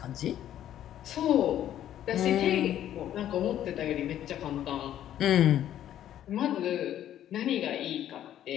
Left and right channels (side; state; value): right; quieter; 11.4 dB